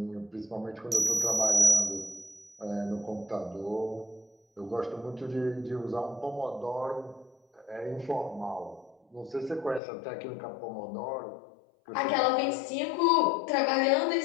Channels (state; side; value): drops out; right; at 9.8 s